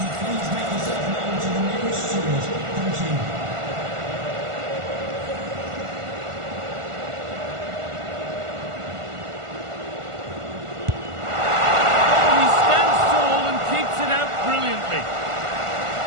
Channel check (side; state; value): left; late; 1.5 ms